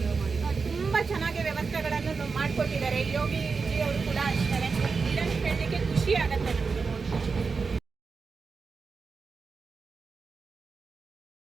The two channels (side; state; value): left; quieter; 4.9 dB